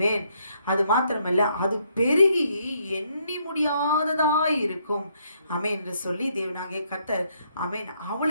அது மாத்திரமல்ல, அது பெருகி எண்ணி முடியாததாய் இருக்கும். ஆமென் என்று சொல்லி தேவனாகிய கர்த்தர் ஆமென்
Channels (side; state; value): both; inverted; correlation -0.72